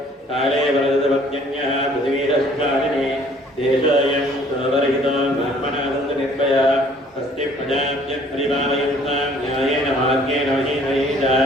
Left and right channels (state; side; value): normal; both; correlation 0.57